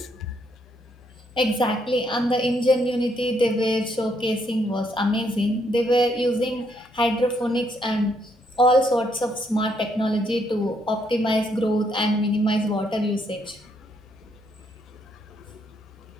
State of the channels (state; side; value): normal; both; correlation 0.73